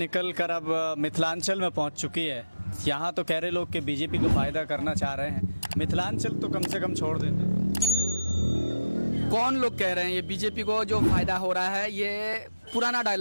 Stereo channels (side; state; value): both; inverted; correlation -0.95